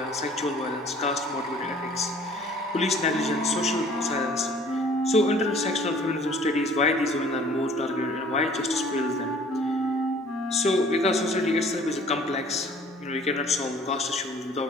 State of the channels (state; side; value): normal; both; correlation 0.53